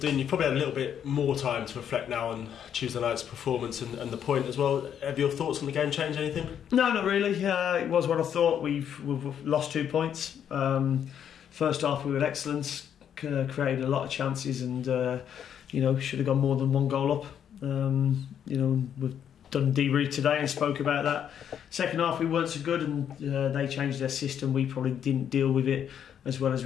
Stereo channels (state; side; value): quieter; right; 8.9 dB